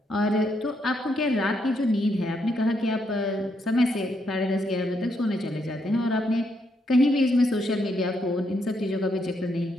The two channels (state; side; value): normal; both; correlation 0.77